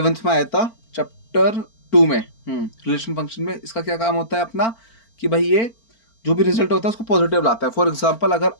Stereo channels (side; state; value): right; late; 4.4 ms